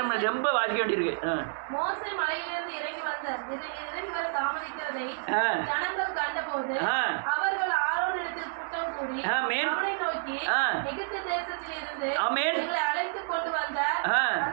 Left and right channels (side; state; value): left; silent; 58 dB below the other